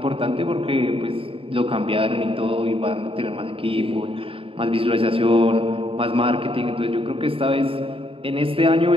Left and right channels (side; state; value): left; late; 0.27 ms